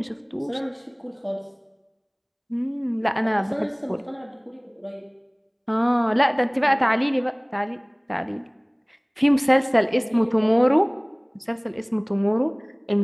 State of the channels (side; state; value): both; identical; correlation 1.00